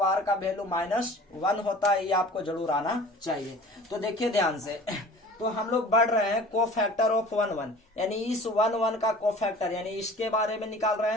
का वैल्यू -1 होता है, ये आपको जरूर आना चाहिए। तो देखिए ध्यान से, तो हम लोग बढ़ रहे हैं कोफैक्टर ऑफ 1 यानी इस 1 का कोफैक्टर यानी इसके बारे में निकाल रहे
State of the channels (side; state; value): both; normal; correlation 0.44